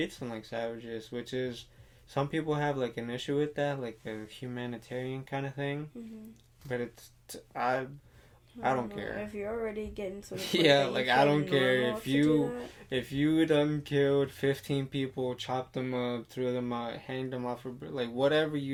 them like savages, which is some people have like an issue with that, like a humanitarian kind of thing. Mm-hmm. But I don't care. If you're already getting to the point yeah, like I don't care if you done killed 15 people, chopped them up, threw them out, hanged them off, like whatever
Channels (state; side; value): identical; both; correlation 1.00